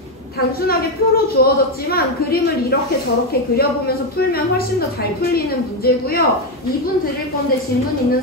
단순하게 표로 주어졌지만 그림을 이렇게 저렇게 그려보면서 풀면 훨씬 더 잘 풀리는 문제고요. 2분 드릴 건데 질문 있는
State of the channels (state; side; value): normal; both; correlation 0.07